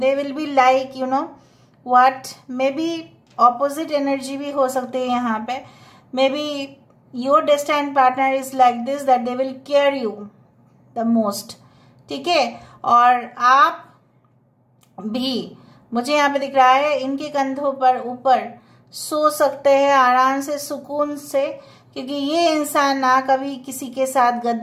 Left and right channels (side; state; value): both; identical; correlation 1.00